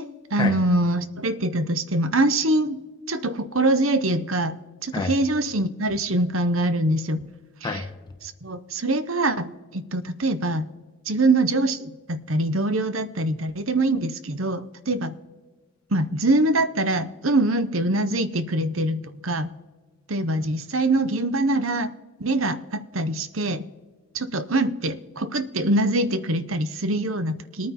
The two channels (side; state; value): both; normal; correlation 0.39